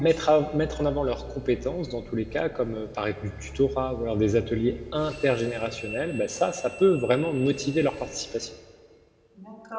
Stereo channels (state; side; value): identical; both; correlation 1.00